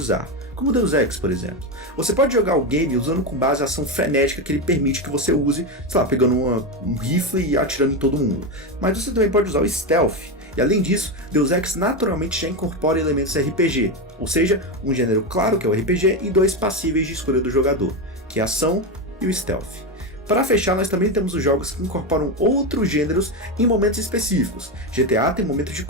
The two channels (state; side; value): normal; both; correlation 0.12